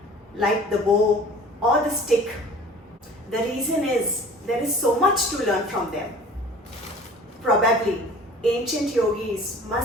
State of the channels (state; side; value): normal; both; correlation 0.45